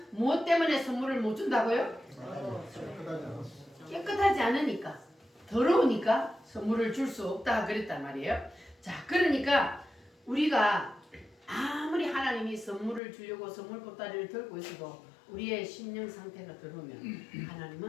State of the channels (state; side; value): drops out; right; at 13.0 s